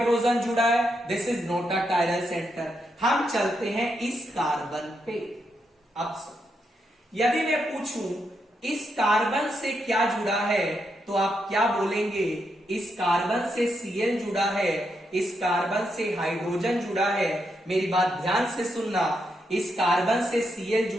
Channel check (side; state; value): both; normal; correlation 0.81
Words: जुड़ा है, this is not a chiral centre. हम चलते हैं इस कार्बन पे। अब यदि मैं पूछूं इस कार्बन से क्या जुड़ा है तो आप क्या बोलेंगे, इस कार्बन से Cl जुड़ा है, इस कार्बन से हाइड्रोजन जुड़ा है। मेरी बात ध्यान से सुनना, इस कार्बन से Cl